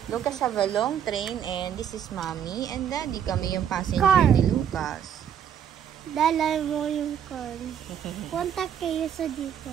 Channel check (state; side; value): quieter; left; 9.0 dB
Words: Lucas have a long train and this is Mommy and Daddy. Kami yung passenger Car. ni Lucas. Dala mo yung car. Punta kayo sa